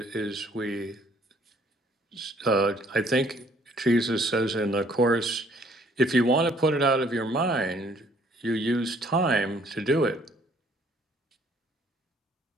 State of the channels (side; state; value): both; normal; correlation 0.62